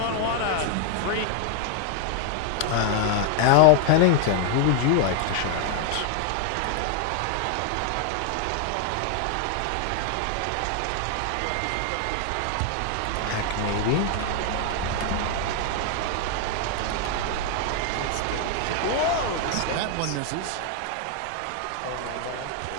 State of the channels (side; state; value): both; different; correlation 0.00